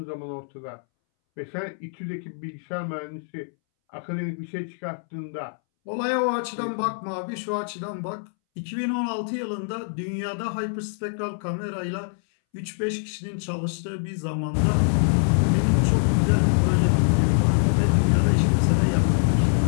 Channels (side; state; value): right; silent; 62 dB below the other